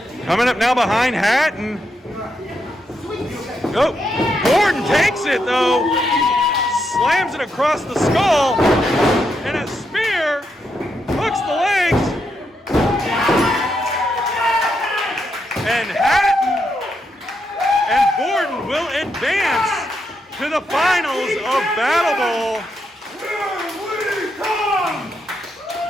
Coming up now behind Hatton. Oh, Gordon takes it though. Slams it across the skull. And a spear hooks the legs. And Hatton and Gordon will advance to the finals of BattleBowl.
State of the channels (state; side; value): normal; both; correlation 0.81